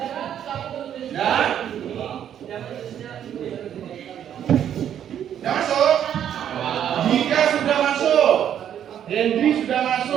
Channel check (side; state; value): left; quieter; 9.7 dB